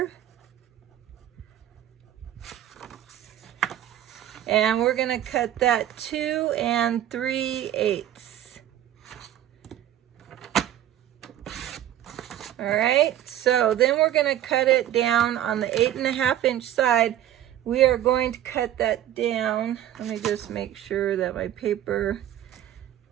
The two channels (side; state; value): left; quieter; 11.9 dB